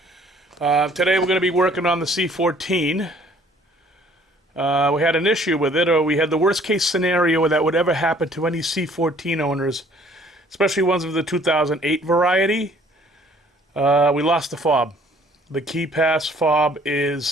Today we're going to be working on the C14. We had an issue with it, or we had the worst case scenario that would ever happen to any C14 owners, especially ones of the 2008 variety. We lost the fob. The KIPASS fob is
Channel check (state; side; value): normal; both; correlation 0.58